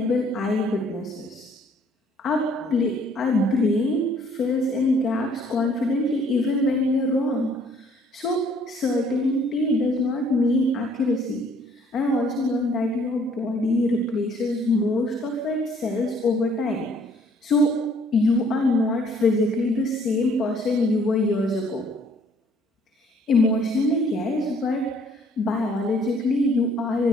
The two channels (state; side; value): normal; both; correlation 0.61